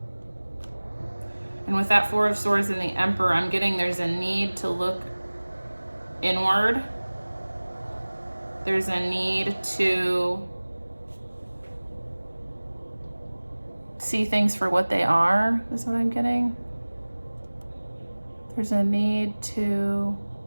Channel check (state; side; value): inverted; both; correlation -1.00